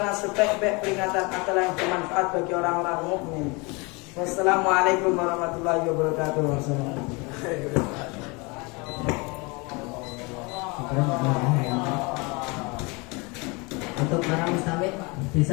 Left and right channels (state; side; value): quieter; right; 27.9 dB